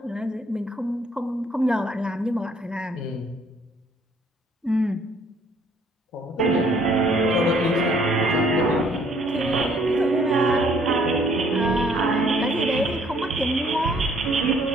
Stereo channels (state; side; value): normal; both; correlation 0.62